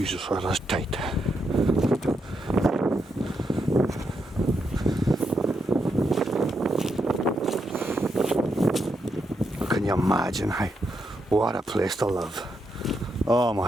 that is tight. Can you imagine? What a place to live. Oh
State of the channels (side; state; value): both; normal; correlation 0.81